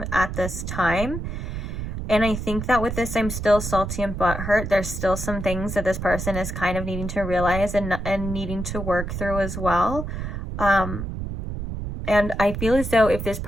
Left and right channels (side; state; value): right; noise; rumble, 5 dB below the sound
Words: at this time. And I think that with this, I'm still salty and butthurt. There's still some things that this person is kind of needing to realize and needing to work through as well. And I feel as though if this